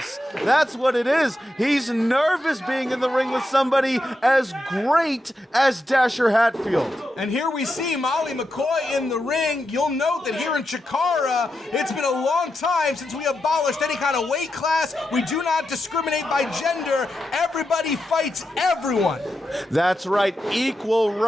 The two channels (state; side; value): normal; both; correlation 0.87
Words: That's what it is. He's nervous being in the ring with somebody as great as Dasher Hatfield. And here we see Molly McCoy in the ring. You'll note that here in CHIKARA, it's been a long time since we abolished any kind of weight class. We do not discriminate by gender. Everybody fights everyone. That's right, equal